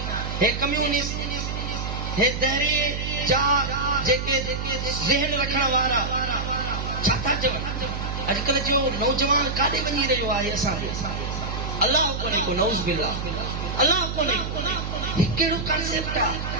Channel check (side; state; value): right; noise; hum, 4 dB below the sound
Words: हे कम्यूनिस्ट, हे दहरी जा जेके ज़हन रखण वारा छा था चवनि, अॼुकल्ह जो नौजवान काॾे वञी रहियो आहे असांजो? अलाह कोन्हे को, नऊज़ बिल्लाह, अलाह कोन्हे को। ही कहिड़ो कॉन्सेप्ट आहे?